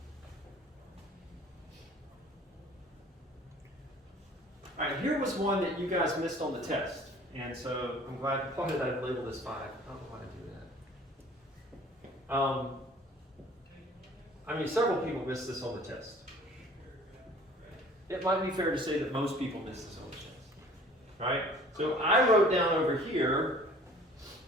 All right, here was one that you guys missed on the test. And so I'm glad, why did I label this 5? I don't know why I do that. I mean, several people missed this on the test. It might be fair to say that most people miss this on the test, right? So I wrote down over here,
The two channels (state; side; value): normal; both; correlation 0.50